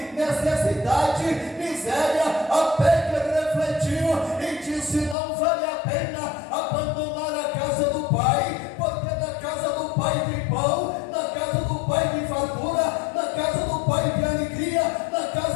necessidade, miséria, até que ele refletiu e disse: não vale a pena abandonar a casa do pai, porque na casa do pai tem pão, na casa do pai tem fartura, na casa do pai tem alegria, na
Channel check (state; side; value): drops out; right; at 5.2 s